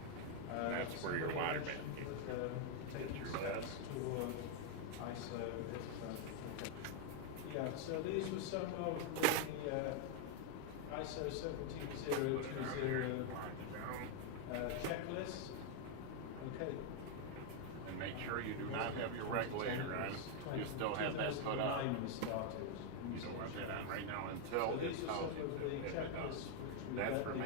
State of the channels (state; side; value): different; both; correlation 0.00